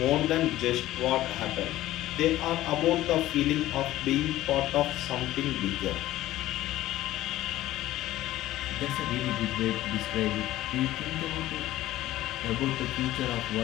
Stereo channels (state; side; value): quieter; right; 15.2 dB